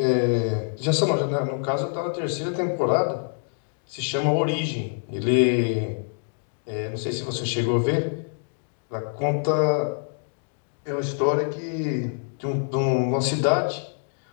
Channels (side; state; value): right; silent; digital silence